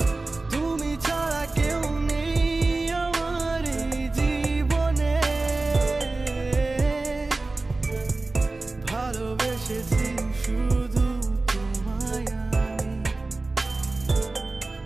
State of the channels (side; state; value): left; quieter; 3.3 dB